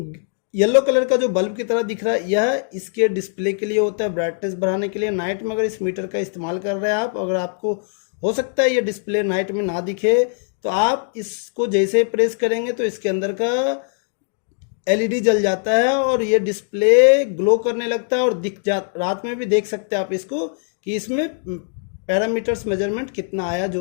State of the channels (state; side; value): silent; right; 60 dB below the other